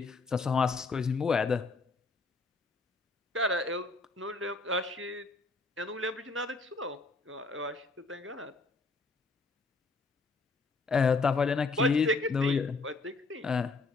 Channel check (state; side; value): quieter; right; 3.7 dB